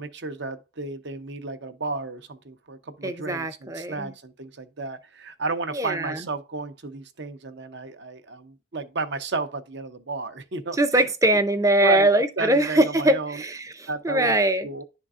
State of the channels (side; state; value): both; normal; correlation 0.26